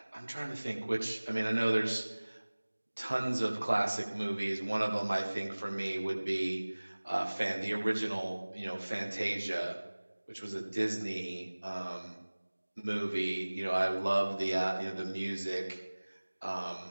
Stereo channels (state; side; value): inverted; both; correlation -1.00